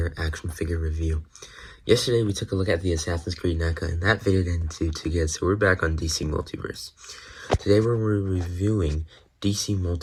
action figure review. Yesterday, we took a look at the Assassin's Creed NECA, and that video didn't do too good, so we're back on DC Multiverse. Today, we're reviewing DC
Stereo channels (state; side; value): identical; both; correlation 1.00